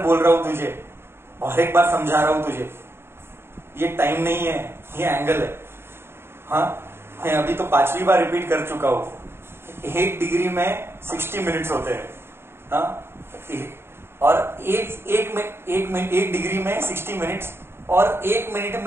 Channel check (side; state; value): left; late; 0.11 ms